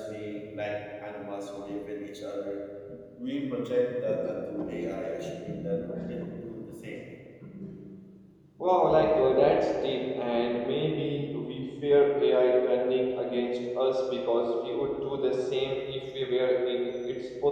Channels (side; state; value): both; identical; correlation 1.00